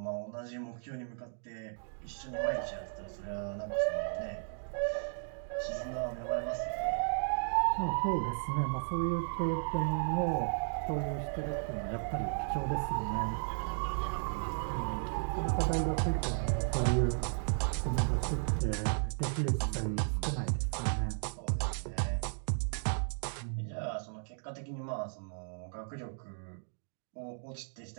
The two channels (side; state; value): left; silent; digital silence